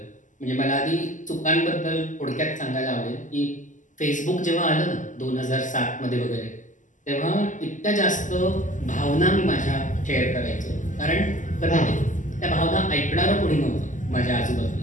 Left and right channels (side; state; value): right; late; 0.37 ms